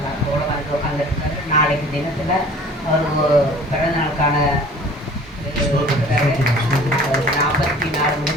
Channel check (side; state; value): both; normal; correlation 0.47